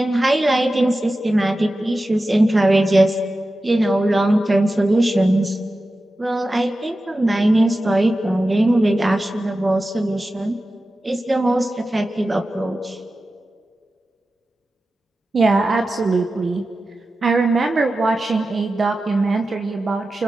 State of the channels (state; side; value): normal; both; correlation 0.93